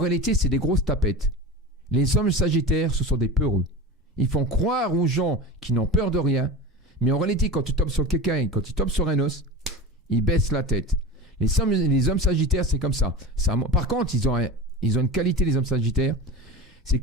c'est des grosses tapettes. Les hommes Sagittaires, ce sont des peureux. Ils font croire aux gens qui n'ont peur de rien. Mais en réalité, quand tu tombes sur quelqu'un, quand ils tombent sur un os, ils baissent la tête. Les hommes Sagittaires, c'est comme ça. Par contre, ils ont une qualité, les hommes Sagittaires, c'est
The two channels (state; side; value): normal; both; correlation 0.28